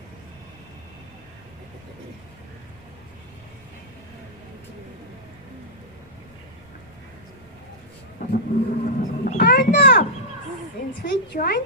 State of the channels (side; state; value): right; noise; rumble, 25 dB below the sound